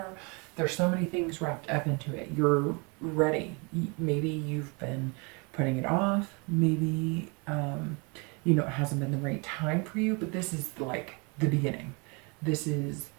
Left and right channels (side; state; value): left; quieter; 31.3 dB